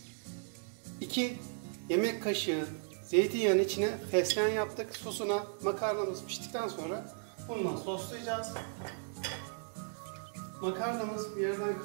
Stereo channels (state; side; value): silent; left; 54 dB below the other